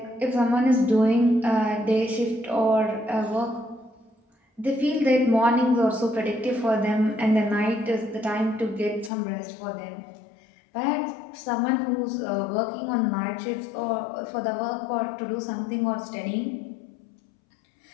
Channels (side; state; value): right; drops out; at 9.1 s